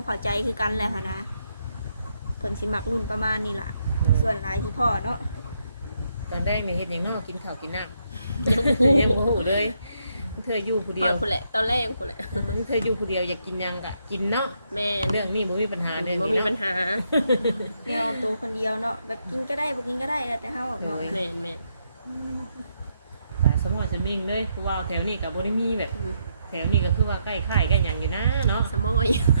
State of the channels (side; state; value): both; inverted; correlation -0.77